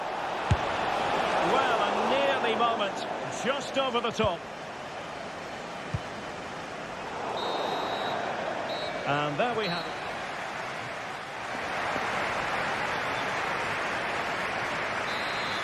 Well, a nearly moment. Just over the top. And there we have it.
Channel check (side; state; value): both; identical; correlation 1.00